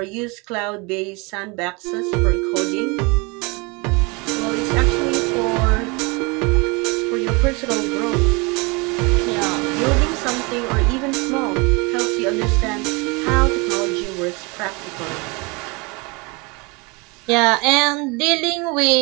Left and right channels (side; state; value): left; quieter; 28.3 dB